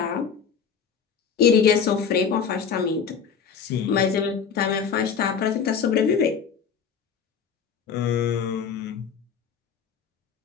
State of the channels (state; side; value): quieter; right; 6.7 dB